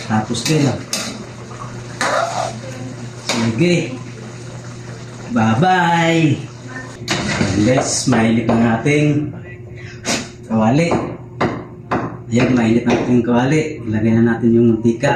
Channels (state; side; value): identical; both; correlation 1.00